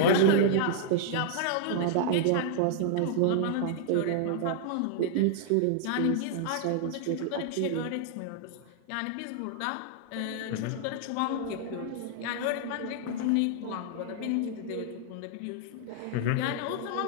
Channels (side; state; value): both; different; correlation -0.01